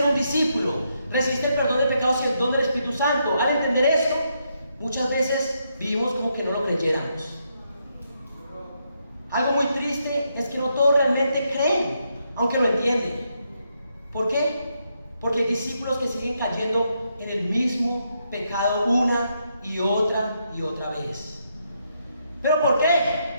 un discípulo, recibiste el perdón de pecados y el don del Espíritu Santo, al entender esto, muchas veces vivimos como que no lo creyéramos. Algo muy triste es que no todos realmente creen, aunque lo entienden. ¿Por qué? Porque hay discípulos que siguen cayendo en el mismo pecado una y otra vez. ¿Pero por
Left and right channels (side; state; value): both; inverted; correlation -0.79